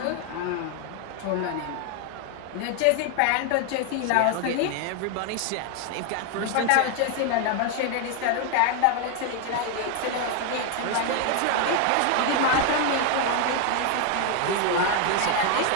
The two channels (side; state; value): both; different; correlation 0.01